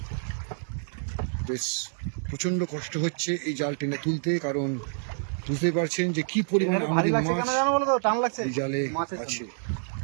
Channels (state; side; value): silent; left; digital silence